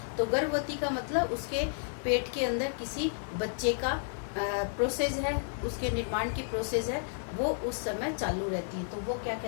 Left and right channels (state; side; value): silent; right; 56 dB below the other